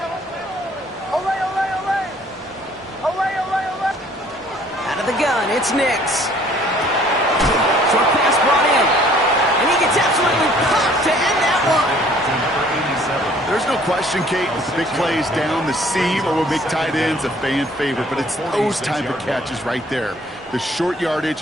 Away, away, away. Away, away, away. Out of the gun, it's Nix. Short pass brought in. And he gets absolutely popped to end that one. There's no question, Kate, with big plays down the seam or with big tight ends, a fan favorite, but it's those type of catches right there. The short yardage,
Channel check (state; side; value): normal; both; correlation 0.57